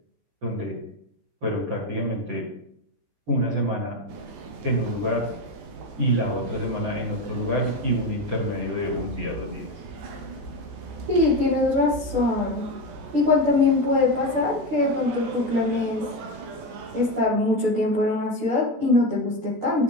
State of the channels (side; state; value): left; late; 14 ms